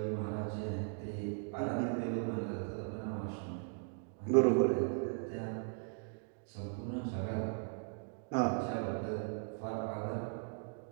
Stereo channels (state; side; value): silent; left; 52 dB below the other